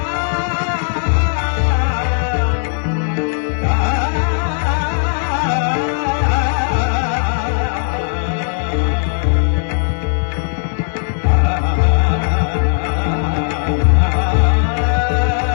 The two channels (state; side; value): silent; right; digital silence